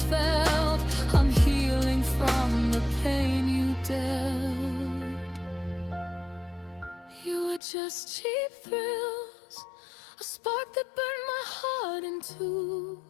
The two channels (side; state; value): right; drops out; at 7.6 s